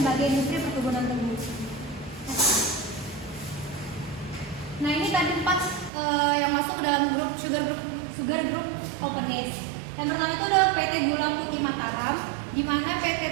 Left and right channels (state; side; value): drops out; left; at 5.9 s